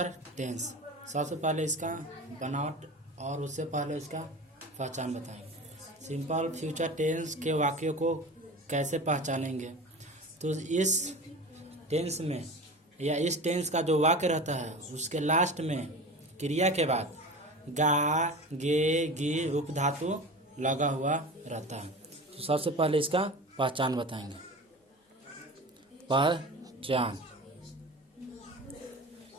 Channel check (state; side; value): normal; both; correlation 0.33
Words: tense. सबसे पहले इसका बनावट और उससे पहले इसका पहचान बताएंगे। सिंपल फ्यूचर टेंस के वाक्यों को कैसे पहचानेंगे, तो इस टेंस में या इस टेंस का जो वाक्य रहता है उसके लास्ट में क्रिया के बाद गा गे गी रूप धातु लगा हुआ रहता है। तो सबसे पहले इसका पहचान बताएंगे। पहचान,